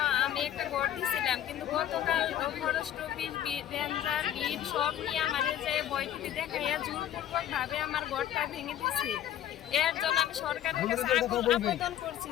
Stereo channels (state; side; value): quieter; right; 11.4 dB